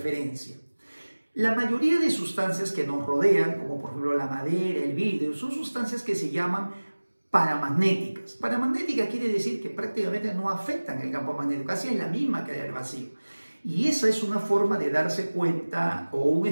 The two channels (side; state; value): both; inverted; correlation -1.00